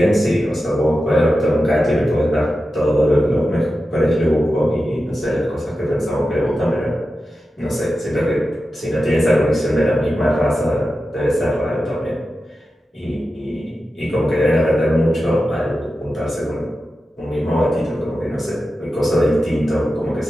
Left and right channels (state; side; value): normal; both; correlation 0.92